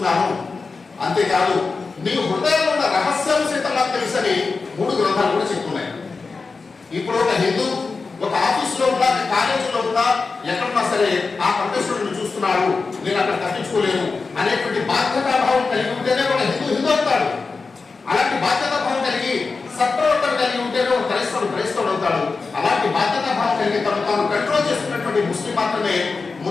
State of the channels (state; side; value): quieter; right; 4.3 dB